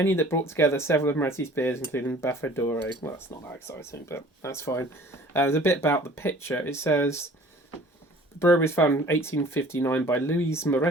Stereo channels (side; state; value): both; normal; correlation 0.50